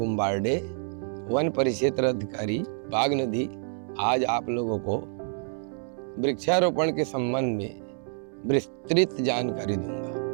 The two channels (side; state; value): left; silent; 60 dB below the other